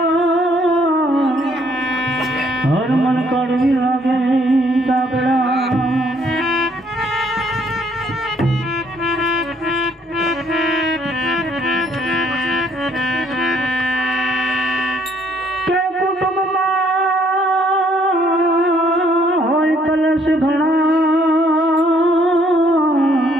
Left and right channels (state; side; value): normal; both; correlation 0.66